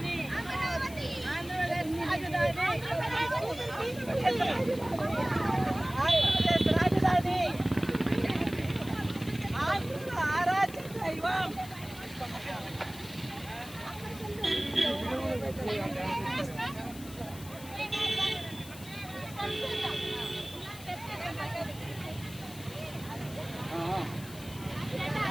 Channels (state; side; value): noise; left; hiss, 16 dB below the sound